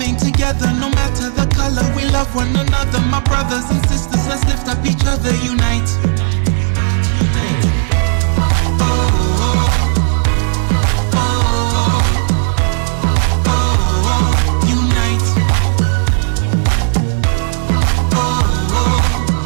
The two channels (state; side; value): silent; left; digital silence